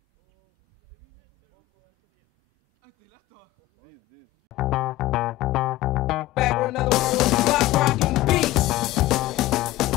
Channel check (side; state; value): right; quieter; 16.8 dB